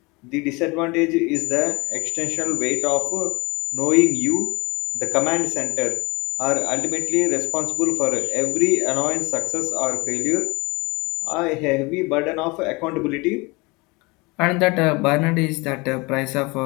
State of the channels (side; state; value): right; quieter; 25.8 dB